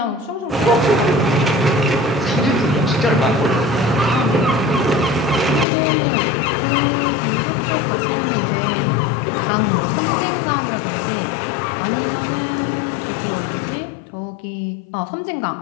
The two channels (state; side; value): drops out; right; at 5.7 s